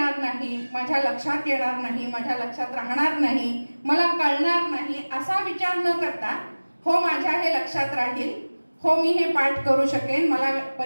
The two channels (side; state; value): both; inverted; correlation -1.00